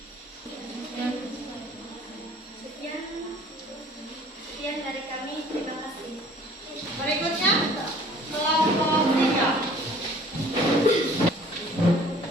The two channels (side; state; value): both; normal; correlation 0.52